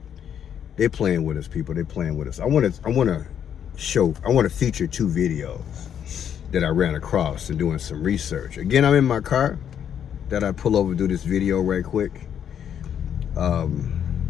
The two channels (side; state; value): right; quieter; 8.9 dB